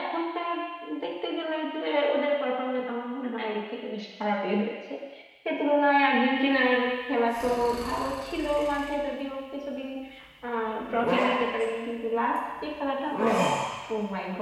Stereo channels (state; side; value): identical; both; correlation 1.00